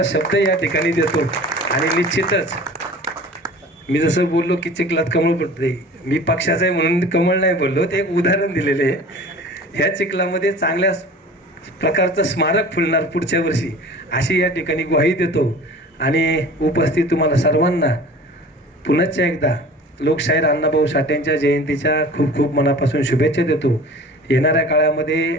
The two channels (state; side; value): normal; both; correlation 0.42